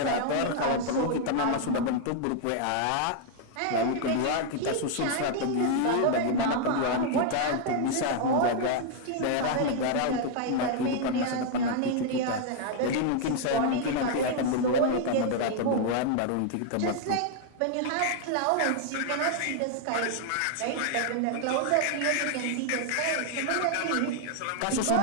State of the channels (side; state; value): both; different; correlation 0.00